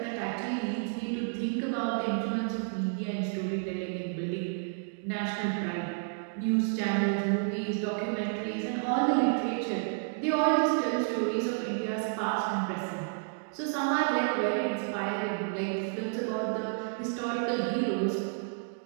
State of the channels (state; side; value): silent; left; digital silence